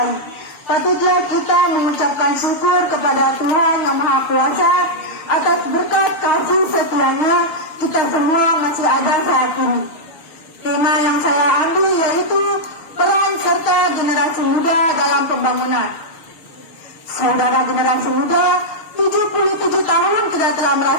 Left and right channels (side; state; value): right; late; 6.4 ms